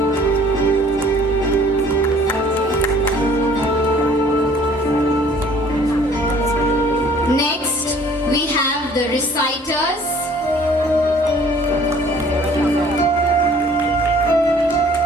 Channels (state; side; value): normal; both; correlation 0.55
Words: Next, we have the reciters.